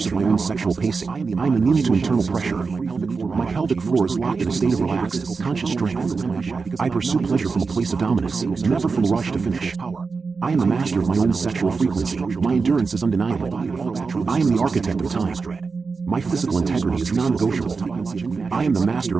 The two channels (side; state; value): left; quieter; 4.7 dB